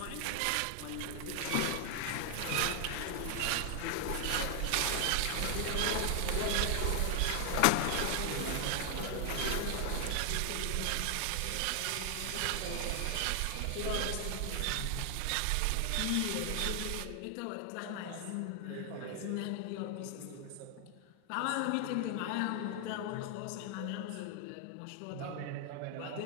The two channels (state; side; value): different; both; correlation 0.00